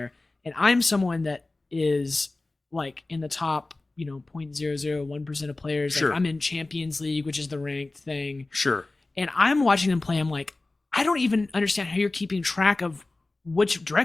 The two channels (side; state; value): right; quieter; 3.1 dB